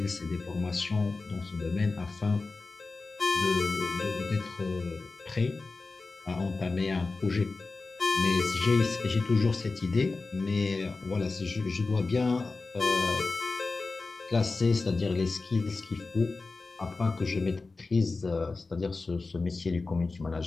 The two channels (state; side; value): quieter; right; 3.8 dB